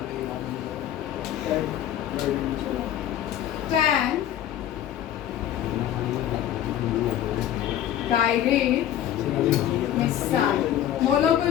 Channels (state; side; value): quieter; right; 11.3 dB